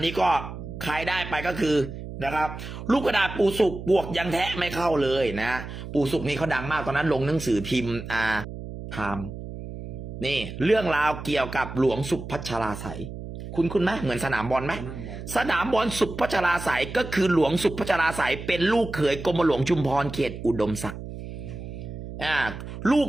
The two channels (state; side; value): noise; right; hum, 10 dB below the sound